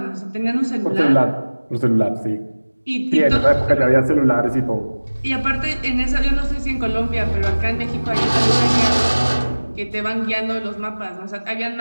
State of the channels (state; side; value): inverted; both; correlation -1.00